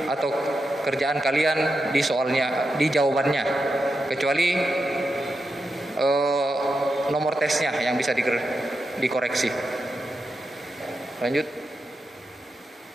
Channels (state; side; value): normal; both; correlation 0.87